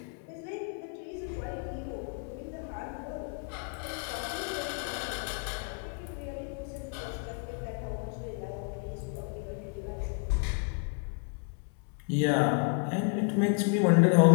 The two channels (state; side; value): quieter; right; 37.1 dB